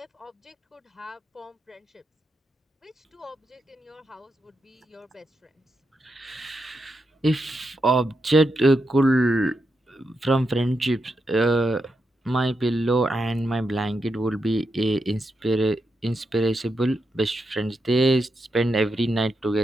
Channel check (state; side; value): normal; both; correlation 0.85